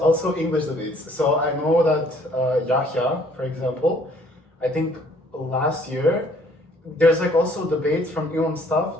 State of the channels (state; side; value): normal; both; correlation 0.60